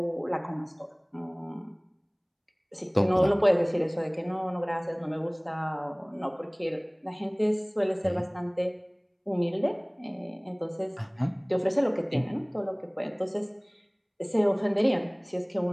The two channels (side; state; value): both; identical; correlation 1.00